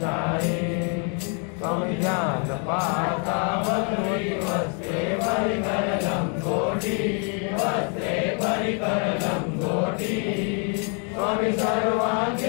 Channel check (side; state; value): right; quieter; 39.5 dB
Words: छाये स्वामी ध्यान पाहता बसवी वस्त्रे परिकर लंगोटी वस्त्रे परिकर लंगोटी स्वामी